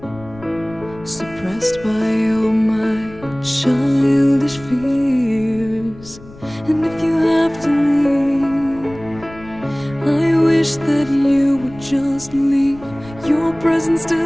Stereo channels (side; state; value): left; noise; rumble, 19 dB below the sound